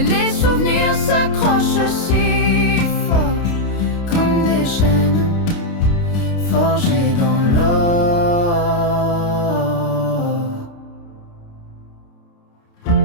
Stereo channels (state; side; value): late; right; 29 ms